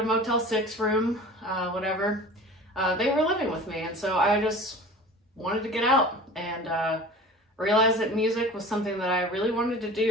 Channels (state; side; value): normal; both; correlation 0.39